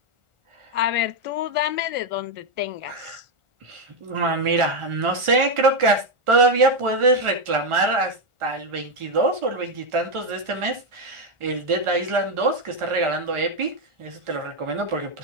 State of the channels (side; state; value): left; late; 1.4 ms